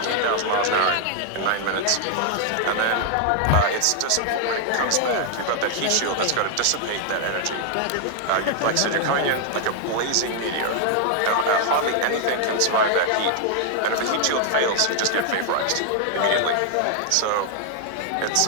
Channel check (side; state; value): both; different; correlation 0.00